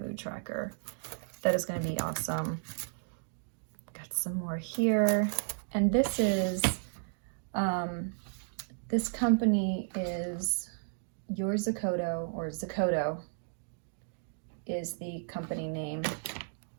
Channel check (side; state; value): left; silent; digital silence